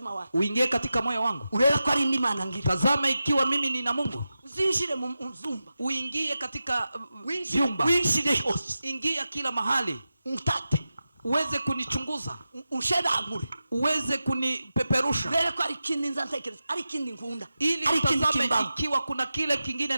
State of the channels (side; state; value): both; inverted; correlation -0.92